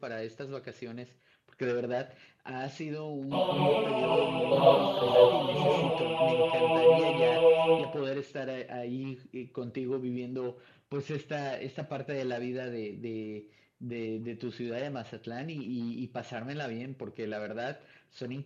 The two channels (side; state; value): both; identical; correlation 1.00